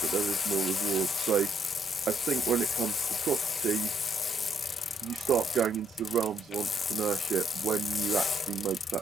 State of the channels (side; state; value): both; normal; correlation 0.72